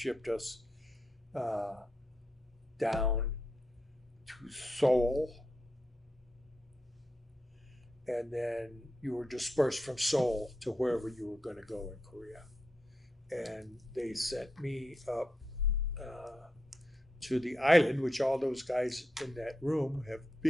us down to Seoul. And then you were dispersed from Seoul to wherever you were going to go in Korea. And they sent me up to the island, which all those guys in that room have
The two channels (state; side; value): normal; both; correlation 0.84